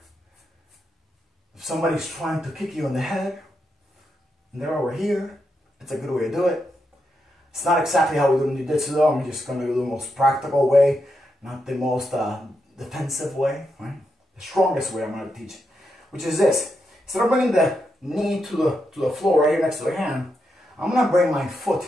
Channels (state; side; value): normal; both; correlation 0.84